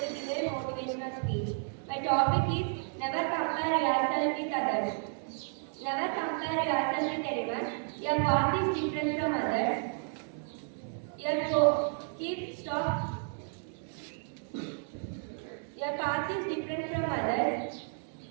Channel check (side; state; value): left; silent; 56 dB below the other